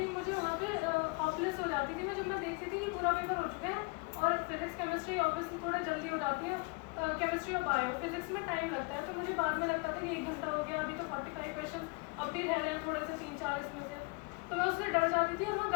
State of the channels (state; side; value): quieter; right; 29.5 dB